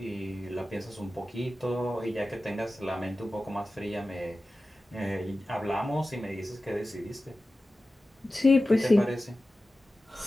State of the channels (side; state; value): both; normal; correlation 0.95